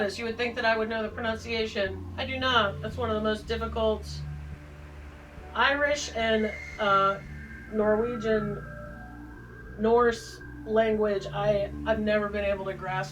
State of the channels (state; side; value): identical; both; correlation 1.00